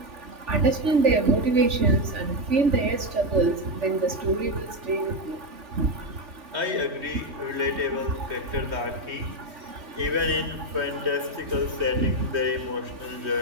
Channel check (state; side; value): late; left; 3.4 ms